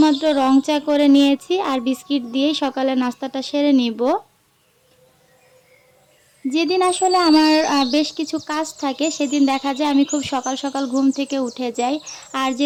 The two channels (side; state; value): both; identical; correlation 1.00